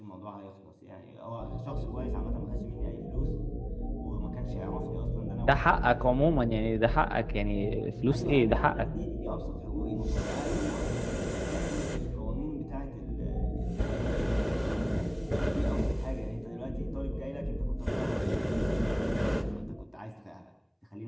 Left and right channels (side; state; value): both; identical; correlation 1.00